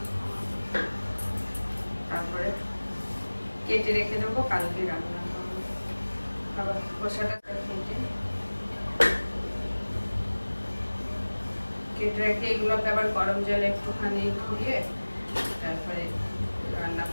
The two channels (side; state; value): both; inverted; correlation -1.00